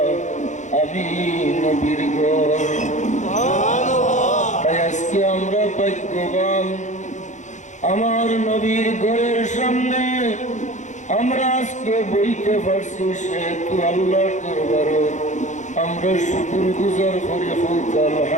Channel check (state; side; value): late; right; 0.35 ms